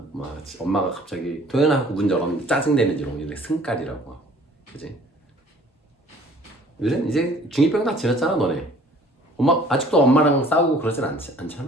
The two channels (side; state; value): both; normal; correlation 0.53